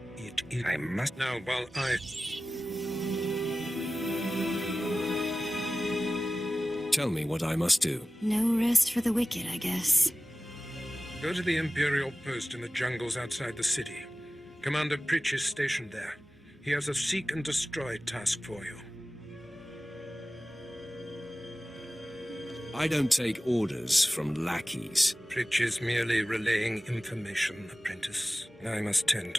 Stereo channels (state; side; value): normal; both; correlation 0.96